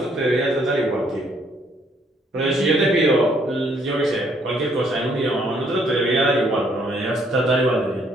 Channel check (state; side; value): normal; both; correlation 0.67